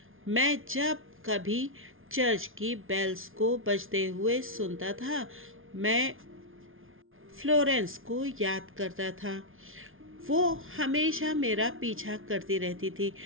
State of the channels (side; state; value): left; late; 0.59 ms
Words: मैं जब कभी चर्च की बेल्स को बजते हुए सुनता था, मैं फ्लोरेंस को याद करता था। वो हमेशा मेरा पीछा करती रहती थी,